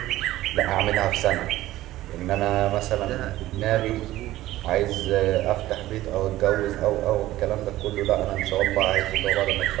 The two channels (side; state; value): left; quieter; 15.6 dB